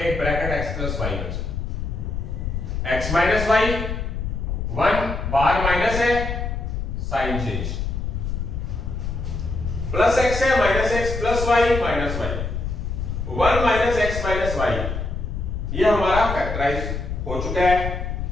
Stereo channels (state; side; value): noise; left; rumble, 3 dB below the sound